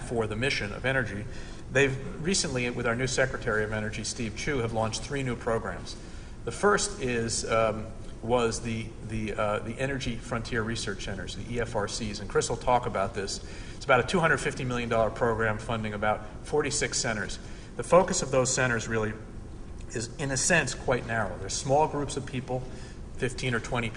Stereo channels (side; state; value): both; identical; correlation 1.00